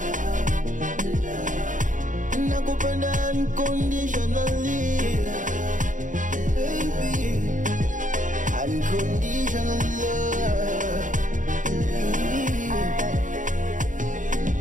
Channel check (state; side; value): late; left; 0.37 ms